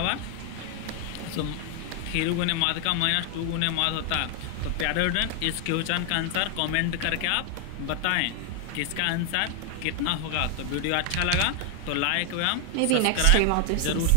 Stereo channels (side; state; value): both; different; correlation 0.00